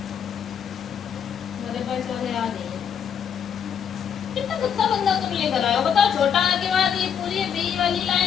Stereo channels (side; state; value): right; quieter; 8.0 dB